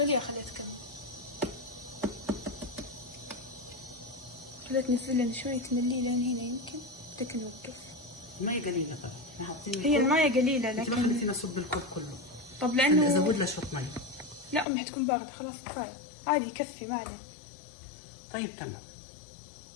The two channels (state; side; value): drops out; right; at 14.7 s